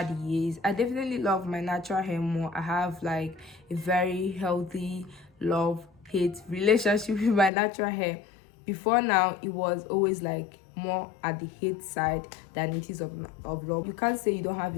years. I definitely love my natural hair more. I have like a very healthy love-hate relationship with my natural hair. Before now, it was always like more at the hate side than it is of love. You can't say you don't have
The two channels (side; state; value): right; drops out; at 7.5 s